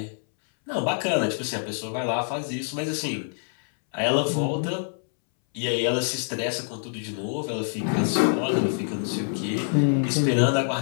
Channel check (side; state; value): right; silent; 61 dB below the other